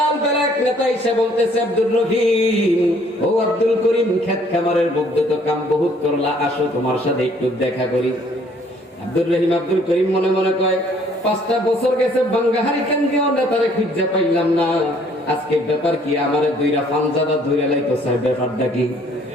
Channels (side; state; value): both; normal; correlation 0.61